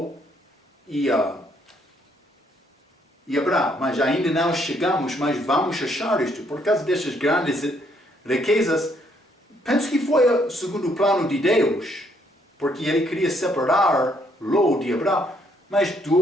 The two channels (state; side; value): normal; both; correlation 0.70